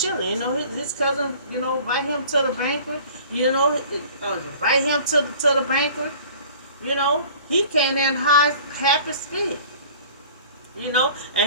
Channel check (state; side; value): inverted; both; correlation -0.47